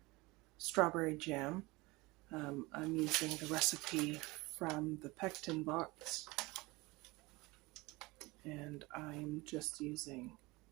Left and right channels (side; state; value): left; quieter; 22.7 dB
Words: strawberry jam. I'm using the recipe from the pectin box, and I'm just using